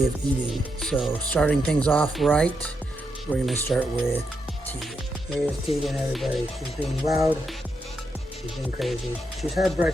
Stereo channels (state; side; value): normal; both; correlation 0.82